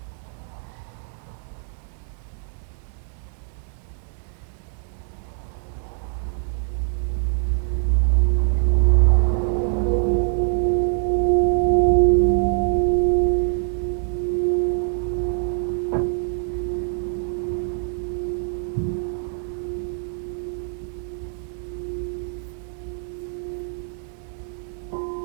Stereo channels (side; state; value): left; silent; digital silence